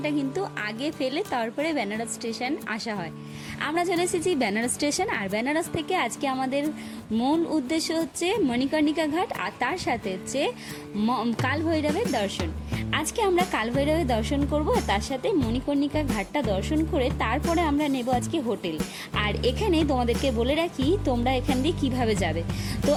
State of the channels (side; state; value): both; identical; correlation 1.00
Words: কিন্তু আগে ফেলে তারপরে বেনারস স্টেশন আসা হয়। আমরা চলে এসেছি বেনারস স্টেশন, আর বেনারস থেকে আজকে আমাদের মূল উদ্দেশ্য হচ্ছে মণিকর্ণিকা ঘাট, আর তার সাথে হচ্ছে কাল ভৈরবের দর্শন। আজকে আমরা কাল ভৈরবের দর্শন করব, তার সাথে মণিকর্ণিকা ঘাটটা দর্শন করে তারপরে আমরা নেব আজকে হোটেল। আর এখানে তোমাদেরকে বলে রাখি তোমরা এখান দিয়ে কীভাবে যাবে। তো